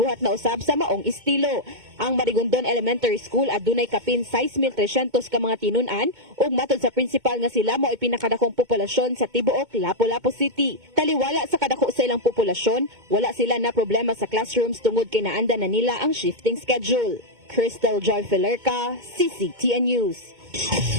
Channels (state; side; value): late; left; 2.2 ms